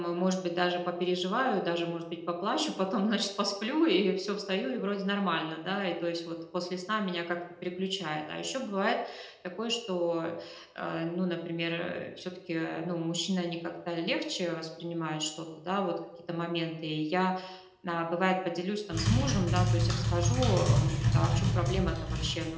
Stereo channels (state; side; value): identical; both; correlation 1.00